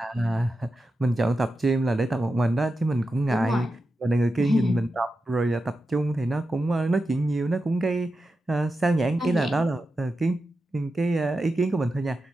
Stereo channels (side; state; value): both; normal; correlation 0.90